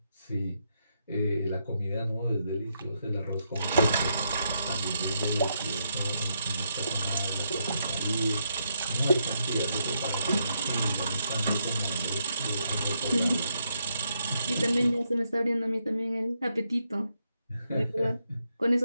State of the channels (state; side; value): inverted; both; correlation -0.79